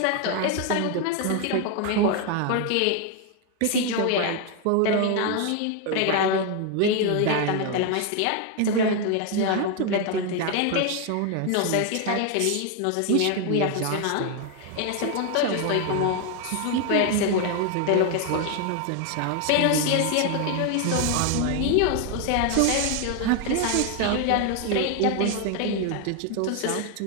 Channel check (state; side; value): different; both; correlation 0.01